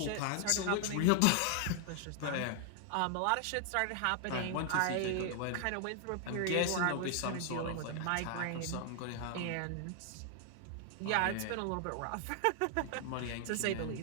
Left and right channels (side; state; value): both; different; correlation 0.00